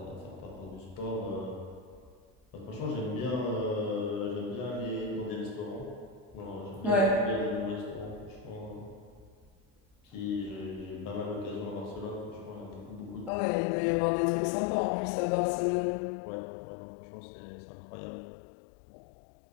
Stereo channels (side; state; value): right; drops out; at 13.3 s